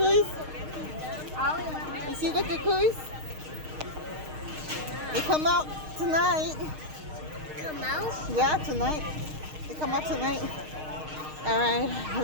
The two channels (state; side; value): late; left; 6.5 ms